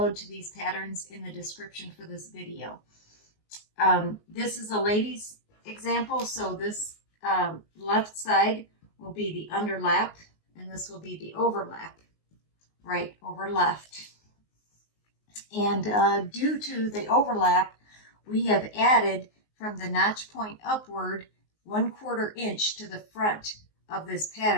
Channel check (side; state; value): right; late; 19 ms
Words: to these patterns in the description for this video. This is a lady's example, so this left side will be the underlap, and this will be the overlap, right over left. And due to the overlap, we have added from the notch point upward 1/4 inch to the front of this